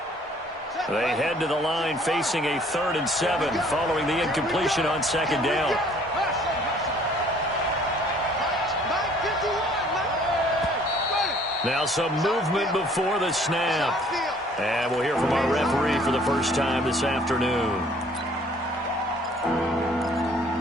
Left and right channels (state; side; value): normal; both; correlation 0.57